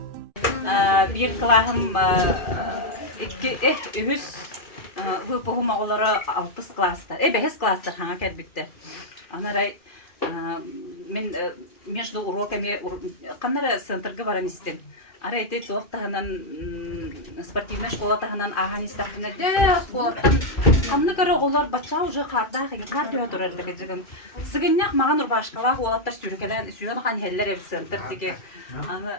Bir klahım ühüs выпугум оголары 6 класстар, 5 класстар хана келбитте. Анарай мен между уроками каннара центрга баран истем. Арайты тохтаһынан спортивная школа таһынан ахан истахна де школаттан камны көрө оголор бача уже карда кардио турар деген. Сыгыннак маган урбашкала олаттар сүрүкелен сүйөн хан хеллер центр диге. Аны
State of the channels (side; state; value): right; late; 2.5 ms